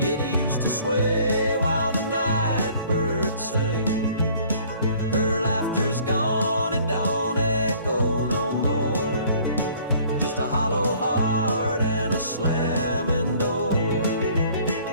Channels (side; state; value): both; inverted; correlation -0.55